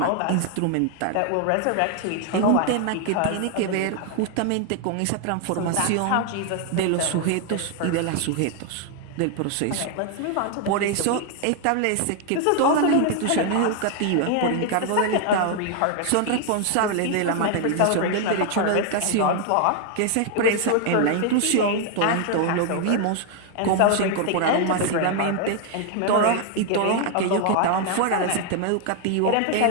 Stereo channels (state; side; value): different; both; correlation 0.00